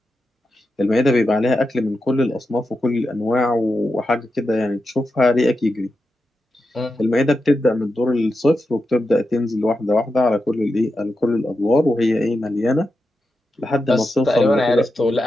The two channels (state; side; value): normal; both; correlation 0.89